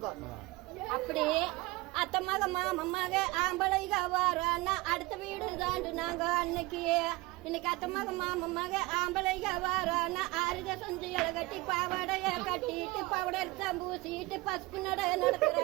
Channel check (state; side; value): quieter; left; 22.3 dB